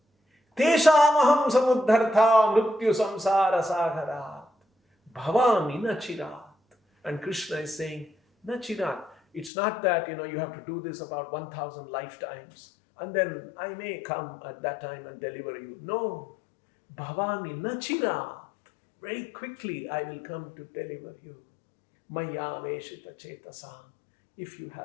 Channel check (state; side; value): drops out; right; at 9.5 s